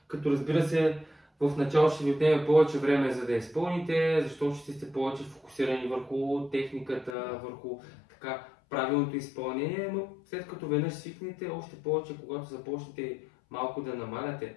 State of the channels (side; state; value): right; drops out; at 7.2 s